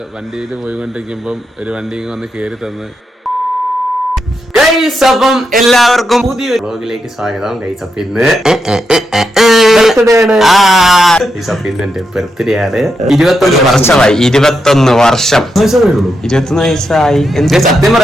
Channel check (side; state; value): both; normal; correlation 0.84